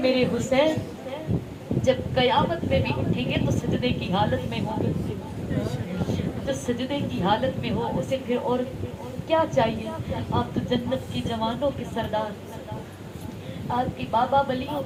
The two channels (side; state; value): both; identical; correlation 1.00